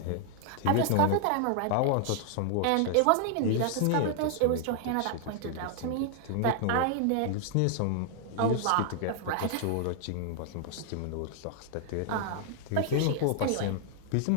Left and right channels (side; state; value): both; different; correlation 0.00